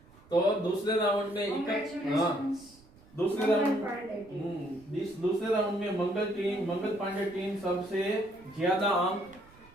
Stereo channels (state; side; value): noise; right; rumble, 26 dB below the sound